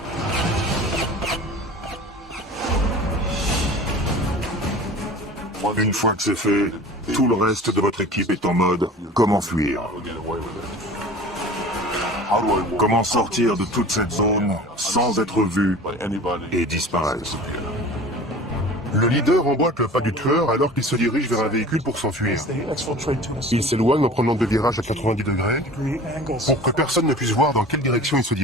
Une fois que c'est fait, tout le reste de votre équipe est en mode « Comment fuir ?» Comment sortir de toute cette zone sans être vu et disparaître? Le leader emboîte le pas du tueur alors qu'il se dirige vers un véhicule pour s'enfuir. Il s'éloigne en prenant deux virages à 90 degrés pour que personne ne puisse voir dans quelle direction il se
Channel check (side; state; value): both; normal; correlation 0.41